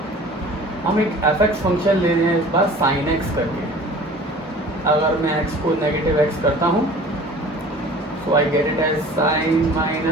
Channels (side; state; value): both; normal; correlation 0.45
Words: हम एक एफ एक्स फंक्शन ले रहे हैं इस बार साइन एक्स करके। अगर मैं एक्स को नेगेटिव एक्स करता हूँ so I get it as sine